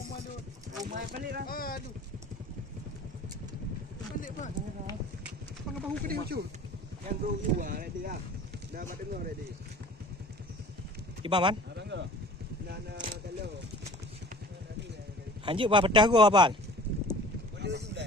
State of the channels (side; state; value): both; normal; correlation 0.44